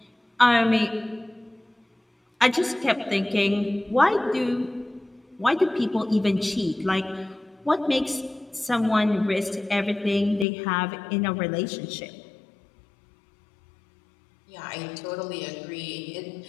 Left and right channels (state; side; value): drops out; right; at 10.5 s